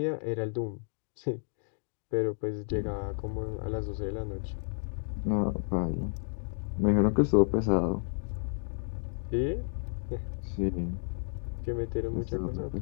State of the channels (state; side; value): silent; right; digital silence